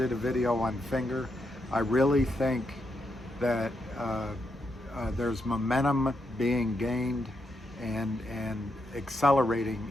a video on Finger. I really think that there's momentum being gained and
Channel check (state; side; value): normal; both; correlation 0.82